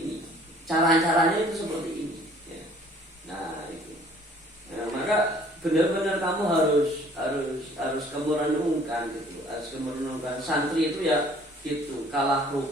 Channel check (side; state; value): both; normal; correlation 0.56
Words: Cara-caranya itu seperti ini. Ya. Nah, itu. Nah, maka benar-benar kamu harus kamu renungkan gitu. Harus kamu renungkan. Santri itu ya gitu. Kalah